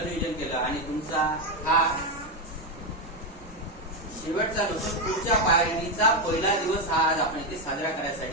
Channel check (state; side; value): normal; both; correlation 0.08